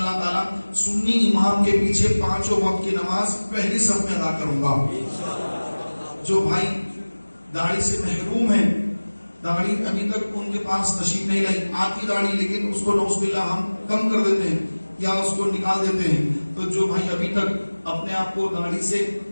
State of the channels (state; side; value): inverted; both; correlation -1.00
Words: تعالی سنی امام کے پیچھے 5 وقت کی نماز پہلی صف میں ادا کروں گا. جو بھائی داڑھی سے محروم ہیں، داڑھی ابھی تک ان کے پاس تشریف نہیں لائی، آتی داڑھی لیکن اس کو نعوذ باللہ ہم کم کر دیتے ہیں یا اس کو نکال دیتے ہیں، تو جو بھائی ابھی تک اپنے آپ کو داڑھی سے